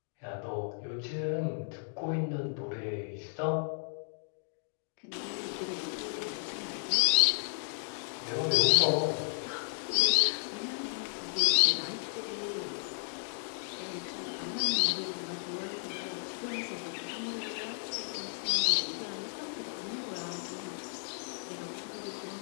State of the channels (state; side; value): silent; right; digital silence